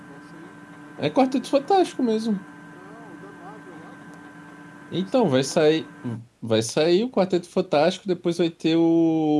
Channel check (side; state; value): both; identical; correlation 1.00